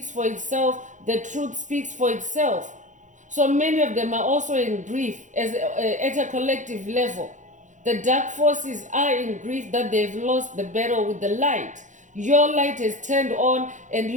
for itself, the truth speaks for itself. So many of them are also in grief at a collective level. The dark forces are in grief that they've lost the battle with the light. Your light is turned on and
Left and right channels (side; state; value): left; late; 0.36 ms